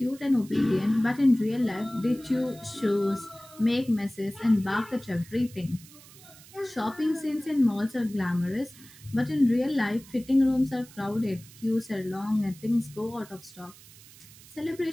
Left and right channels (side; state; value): right; noise; hiss, 21 dB below the sound